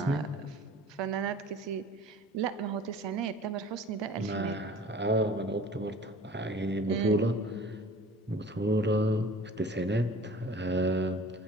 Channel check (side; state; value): both; normal; correlation 0.45